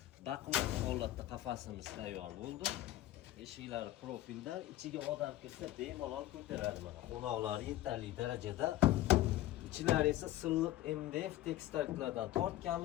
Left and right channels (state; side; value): quieter; right; 14.8 dB